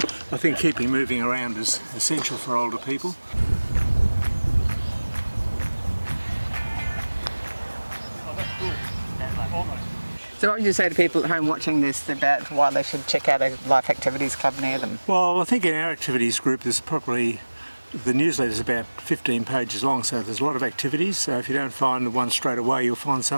think keeping moving around is essential for older people. So what would you say to people at home watching this about why they should check out a Life Activities Club near them? Well, I think in our activities group there's probably, the newsletter is about 15 pages long, so there's a lot of activities. So if you don't find the one straight away, you'll find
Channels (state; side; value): inverted; both; correlation -1.00